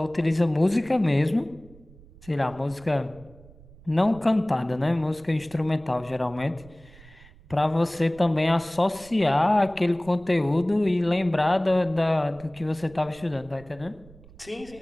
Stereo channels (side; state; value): right; noise; rumble, 23 dB below the sound